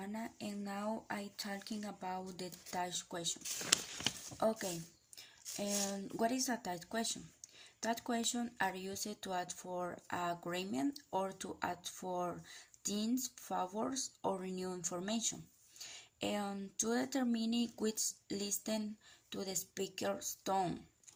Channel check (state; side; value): identical; both; correlation 1.00